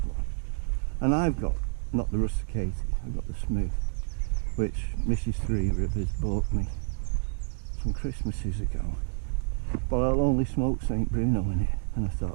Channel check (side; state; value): left; silent; digital silence